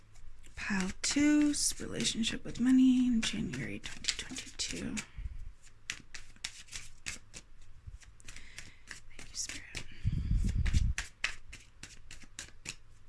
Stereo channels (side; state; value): both; identical; correlation 1.00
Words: Pile 2's relationship with money in January 2022. Thank you, Spirit.